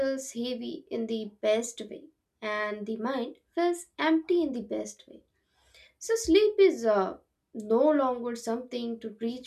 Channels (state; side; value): identical; both; correlation 1.00